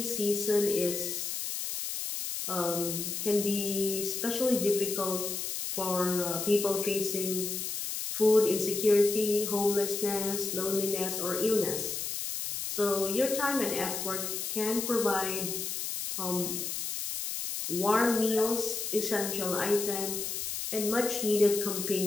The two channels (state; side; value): noise; left; hiss, 4 dB below the sound